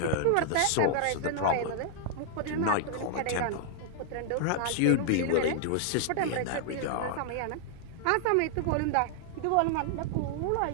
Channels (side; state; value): both; different; correlation -0.01